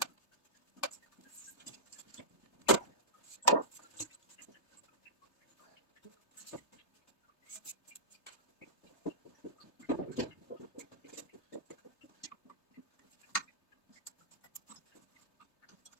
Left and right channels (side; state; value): right; late; 3.3 ms